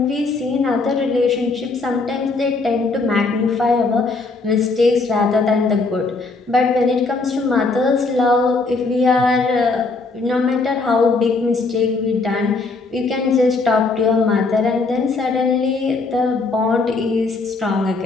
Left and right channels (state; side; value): quieter; right; 3.8 dB